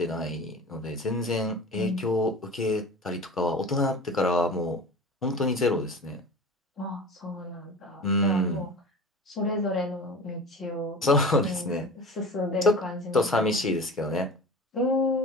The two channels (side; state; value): both; normal; correlation 0.36